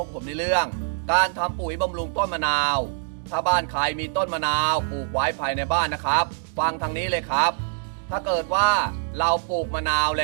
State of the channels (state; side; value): silent; left; digital silence